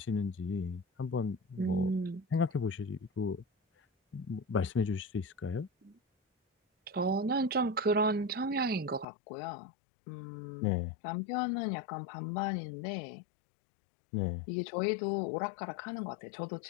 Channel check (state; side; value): drops out; right; at 9.1 s